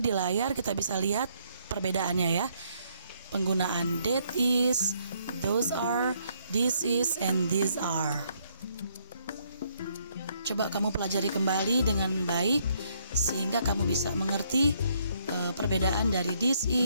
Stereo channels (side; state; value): both; inverted; correlation -0.70